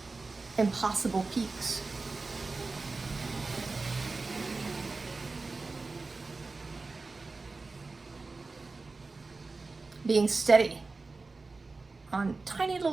impossible peaks. Being steady on tiny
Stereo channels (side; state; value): left; quieter; 3.8 dB